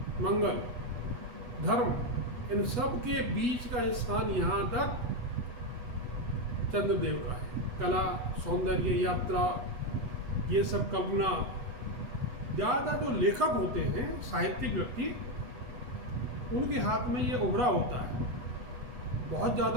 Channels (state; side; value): late; left; 8.2 ms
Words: मंगल, धर्म, इन सब के बीच का स्थान यहाँ तक चंद्रदेव का है। कला, सौंदर्य, यात्रा, ये सब कल्पना। ज़्यादा जो लेखक होते हैं, साहित्यिक व्यक्ति, उनके हाथ में ये उभरा होता है। बहुत